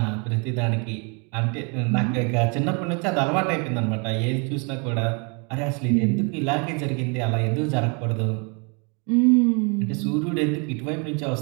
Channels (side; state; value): left; quieter; 33.9 dB